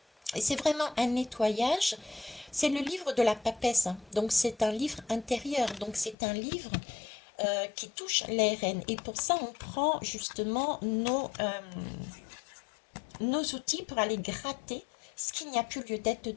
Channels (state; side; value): drops out; right; at 6.2 s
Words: Et c'est vraiment un nettoyage C'est le livre de la papesse, hein. Donc c'est un livre intérieur, donc c'est un livre qui touche l'ARN. Et pour ça, on prend justement nos outils pour aller gratter ce qu'il n'y a plus lieu d'être